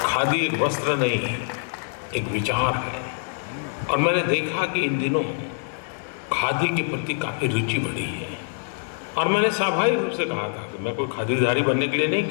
खादी एक वस्त्र नहीं है, एक विचार है। और मैंने देखा कि इन दिनों खादी के प्रति काफी रुचि बढ़ी है। और मैंने स्वाभाविक रूप से कहा था कि मैं कोई खादीधारी बनने के लिए नहीं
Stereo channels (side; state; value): right; silent; 62 dB below the other